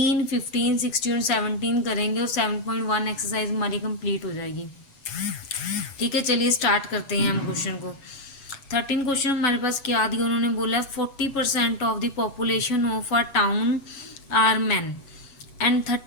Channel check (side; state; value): right; late; 8.0 ms